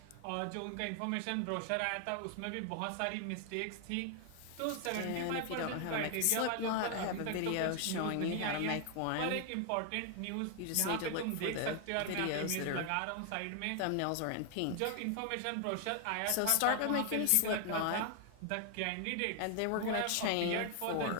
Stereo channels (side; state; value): both; different; correlation 0.00